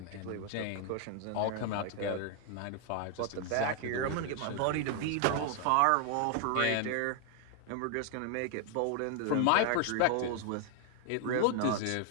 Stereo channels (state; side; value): different; both; correlation 0.00